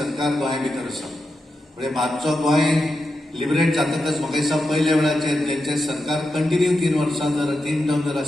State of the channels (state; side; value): normal; both; correlation 0.88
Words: गोंया भितर आसा. म्हणजे मातसो गोंय लिबरेट जातकच म्हाका दिसता पयल्या वेळाचेर जेंचे सरकार कंटिन्यू 3 वर्सां जर 3 टर्म जर